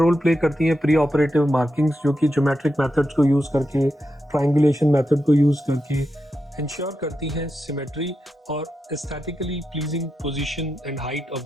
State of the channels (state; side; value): normal; both; correlation 0.87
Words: प्ले करती हैं प्री ऑपरेटिव मार्किंग्स, जो कि ज्योमेट्रिक मेथड्स को यूज़ करके, ट्रायंगुलेशन मेथड को यूज़ करके इंश्योर करती हैं सिमेट्री और aesthetically pleasing position and height of